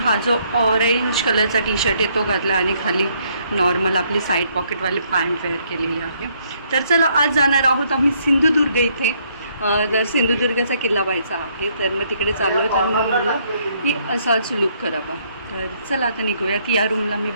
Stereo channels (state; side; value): inverted; both; correlation -0.69